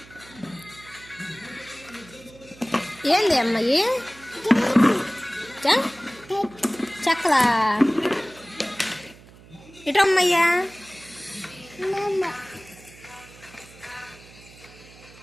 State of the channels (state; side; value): noise; right; hum, 22 dB below the sound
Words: ఏంది అమ్మాయి చెక్కలా ఇటమ్మయ్యా.